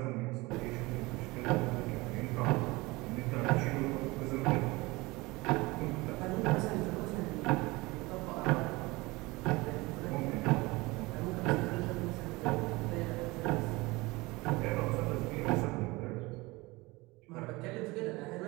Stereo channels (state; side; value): quieter; left; 22.6 dB